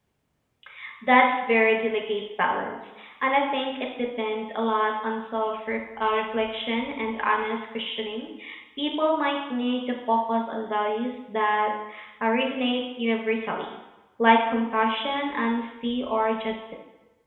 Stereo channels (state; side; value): identical; both; correlation 1.00